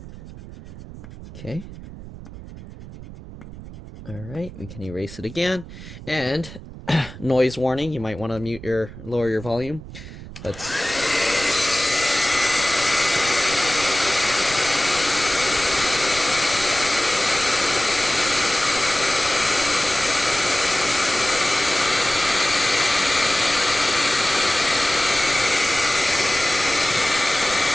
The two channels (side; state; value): right; noise; rumble, 14 dB below the sound